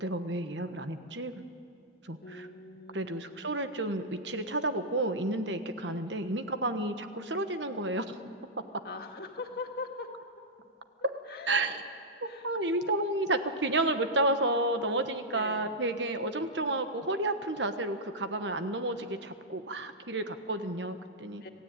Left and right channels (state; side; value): normal; both; correlation -0.06